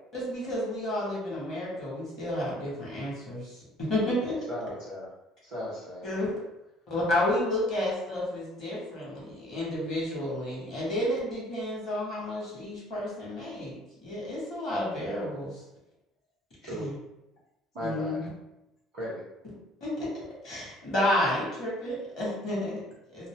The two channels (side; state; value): both; normal; correlation 0.57